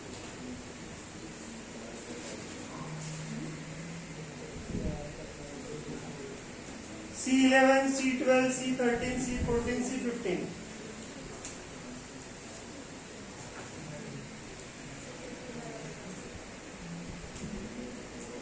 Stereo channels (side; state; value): both; identical; correlation 1.00